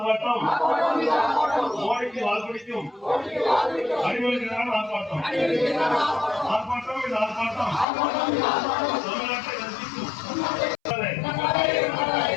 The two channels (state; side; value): drops out; right; at 7.9 s